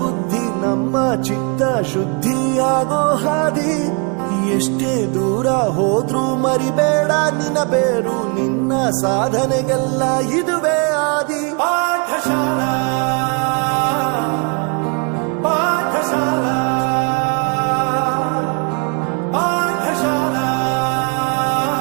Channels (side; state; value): left; quieter; 34.8 dB